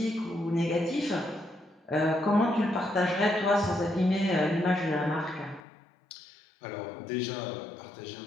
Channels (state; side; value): drops out; right; at 5.6 s